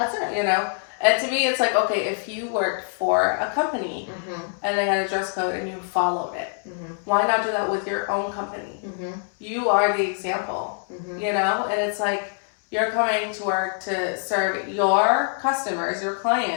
You know? And to me, it's like, okay, if you worked for a company and they had a dress code and you followed it, why not do that with your own company? You are the example, you know? And it's like, you're coming to work to serve your customers, your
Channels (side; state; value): right; silent; 62 dB below the other